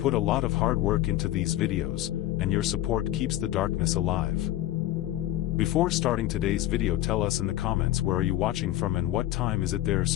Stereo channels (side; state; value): right; quieter; 14.3 dB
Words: a lot of hard work into these videos, and your support keeps the darkness alive. Before starting today's video, tell us in the comments where are you watching from and what time is it there